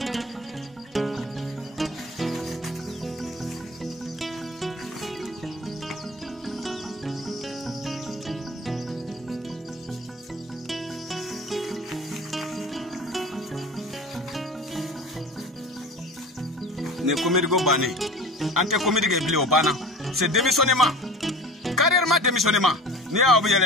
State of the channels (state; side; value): normal; both; correlation 0.37